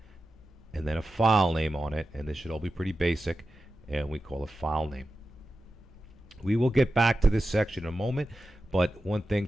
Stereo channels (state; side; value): normal; both; correlation 0.92